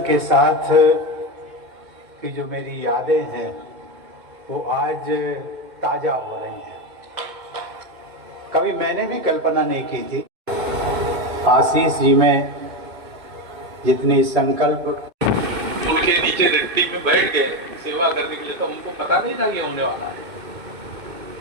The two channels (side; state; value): left; late; 2.6 ms